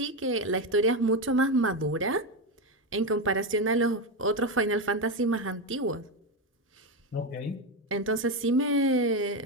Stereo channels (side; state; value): both; normal; correlation 0.12